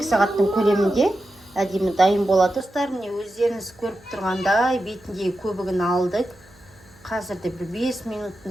сағаттың көлемінде әдемі дайын болады. Достар, міне өздеріңіз көріп тұрғандай бетіндегі көбігін алдық. Қазірде бір 5 минуттың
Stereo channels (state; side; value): noise; right; hum, 28 dB below the sound